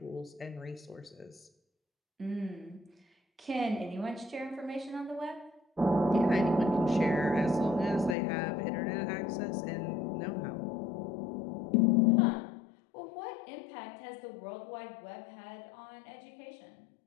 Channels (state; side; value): drops out; right; at 8.2 s